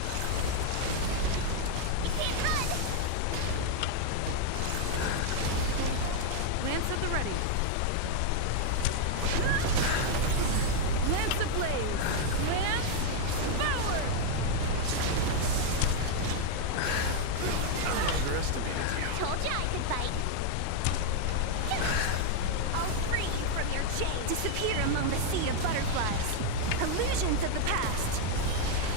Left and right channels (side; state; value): both; different; correlation 0.00